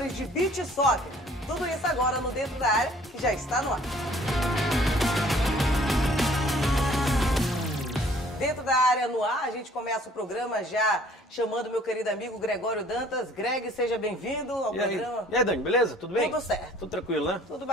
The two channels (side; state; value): both; normal; correlation 0.56